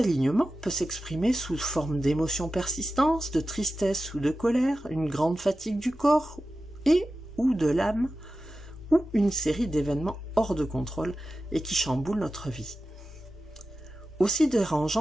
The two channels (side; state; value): both; normal; correlation 0.93